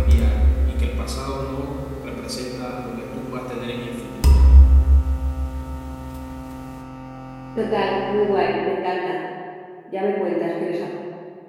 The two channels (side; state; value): both; identical; correlation 1.00